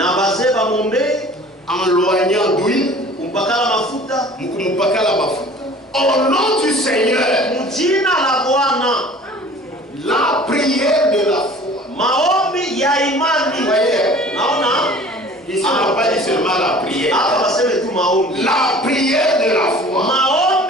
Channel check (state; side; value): normal; both; correlation 0.46